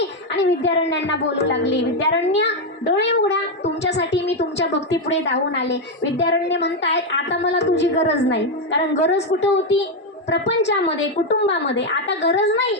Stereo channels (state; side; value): normal; both; correlation 0.05